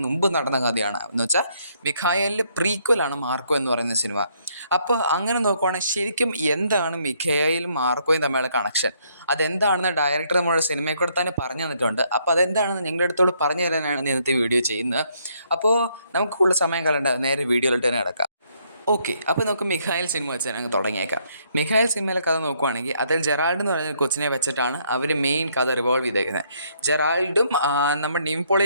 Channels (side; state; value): both; inverted; correlation -0.70